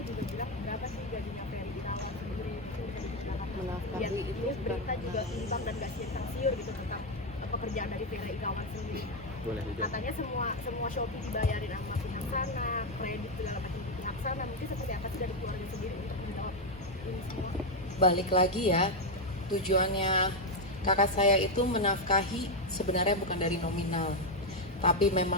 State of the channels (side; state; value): both; normal; correlation 0.04